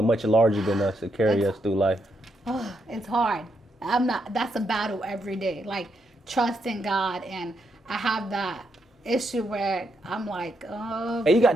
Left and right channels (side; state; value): both; normal; correlation 0.79